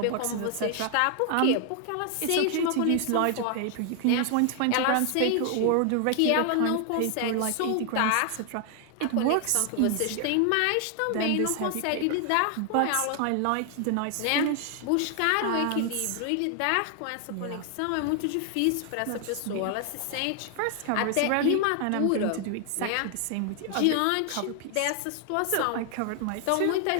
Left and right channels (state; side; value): different; both; correlation 0.00